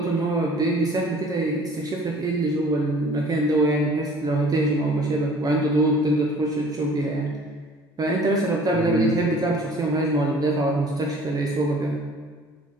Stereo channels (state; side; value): normal; both; correlation 0.51